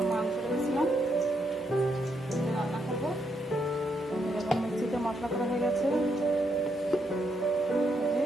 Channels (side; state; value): both; normal; correlation 0.78